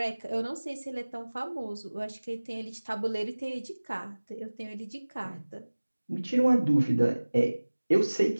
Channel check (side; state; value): both; inverted; correlation -1.00